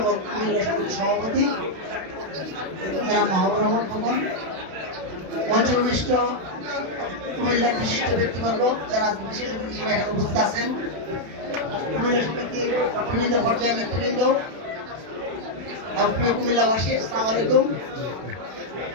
এবং কুমিল্লা সমিতির সভাপতি জনাব মাহবুবুর রহমান খোকন, মঞ্চবিষ্ট কুমিল্লার বিশিষ্ট ব্যক্তিবর্গ যারা বিশেষ অতিথি হিসেবে এখানে উপস্থিত আছেন, কুমিল্লা সমিতির বিভিন্ন পর্যায়ের নেতৃবৃন্দ, প্রিয় কুমিল্লাবাসী, আসসালামু আলাইকুম।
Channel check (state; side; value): late; left; 32 ms